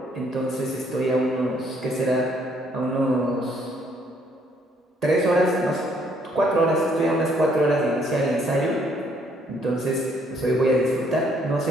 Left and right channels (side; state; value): both; normal; correlation 0.67